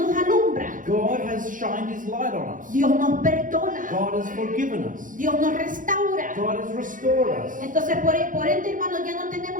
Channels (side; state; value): left; late; 0.38 ms